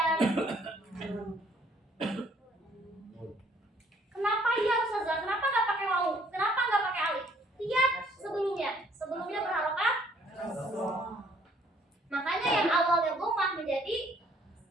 kenapa ya Ustazah? Kenapa nggak pakai wawu? Kenapa nggak pakai alif? Lihat sebelumnya berharokat. Makanya yang awalnya dhammah menjadi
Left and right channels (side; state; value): both; normal; correlation 0.63